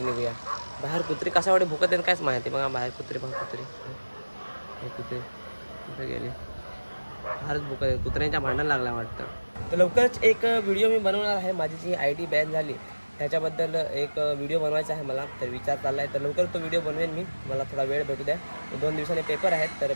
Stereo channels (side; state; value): both; inverted; correlation -1.00